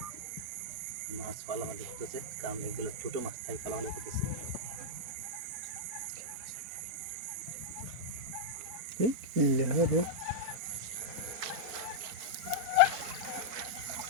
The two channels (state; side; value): late; left; 4.3 ms